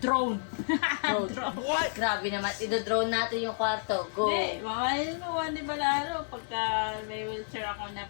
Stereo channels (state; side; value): silent; right; 58 dB below the other